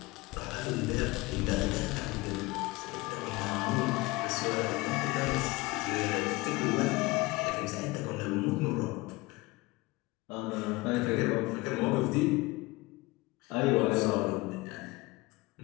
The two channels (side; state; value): right; quieter; 22.0 dB